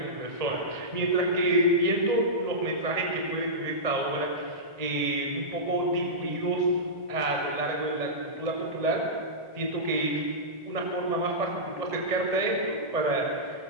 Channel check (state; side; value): late; left; 1.8 ms